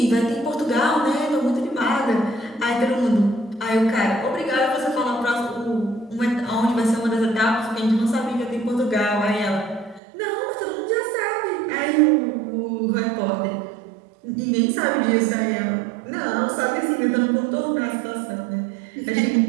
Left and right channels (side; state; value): left; drops out; at 10.0 s